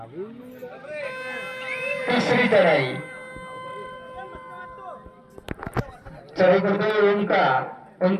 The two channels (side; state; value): both; identical; correlation 1.00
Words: तिसरी चढाई. चढाई करतोय